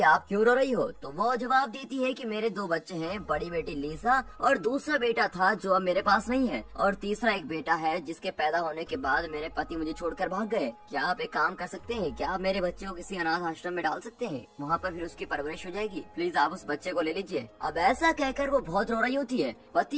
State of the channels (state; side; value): identical; both; correlation 1.00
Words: आप क्यों रो रही हो, तो वो जवाब देती है कि मेरे 2 बच्चे हैं, बड़ी बेटी लीसा और दूसरा बेटा था जो अब मेरे पास नहीं है, और तीसरा एक बेटा है जिसके पैदा होने के बाद मेरे पति मुझे छोड़कर भाग गए। क्या आप एक काम कर सकते हैं, क्या आप मेरे बच्चे को किसी अनाथ आश्रम में डाल सकते हैं, वहाँ पर फिर उसकी परवरिश हो जाएगी, प्लीज आप उस बच्चे को ले लीजिए। अब ऐसा कहकर वो बहुत रो रही होती है।